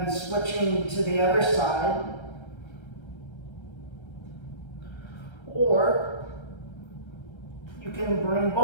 switching to the other side. Or you can bring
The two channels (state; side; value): late; right; 1.3 ms